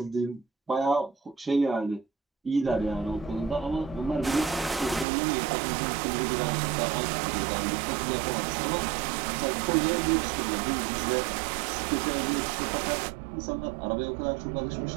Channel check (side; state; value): left; drops out; at 5.1 s